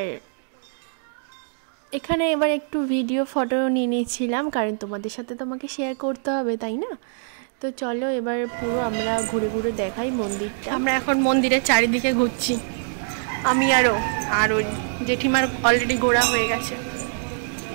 এখানে একটু ভিডিও ফটো নিয়ে নিয়েছিলাম, কারণ তোমাদের সাথে তো আমাকে শেয়ার করতে হবে তাই না। তো চলো এবার পুরো আমরা ঘুরে ঘুরে দেখাই মন্দিরটা। আমরা এখন মন্দিরের চারিদিকে ঘুরছি, আমি আর ওই জেঠিমার অলরেডি ঘোরা হয়ে গেছে।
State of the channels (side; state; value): left; silent; digital silence